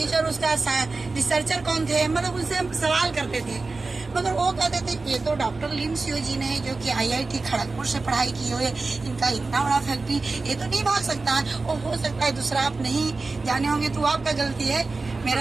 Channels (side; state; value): left; quieter; 3.7 dB